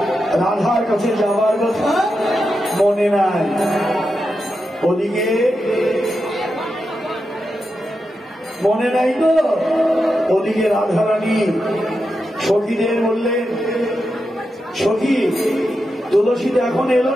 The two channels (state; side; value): normal; both; correlation 0.88